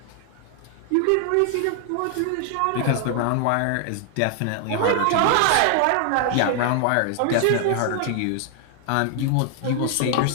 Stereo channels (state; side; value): different; both; correlation 0.00